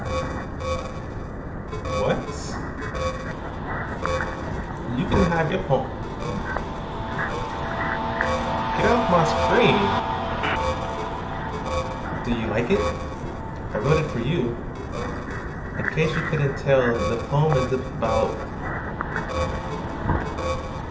What? You can have your poem. Get off my screen. Do you like it? I wrote it for you. In case you couldn't tell, the poem is about...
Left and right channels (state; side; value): identical; both; correlation 1.00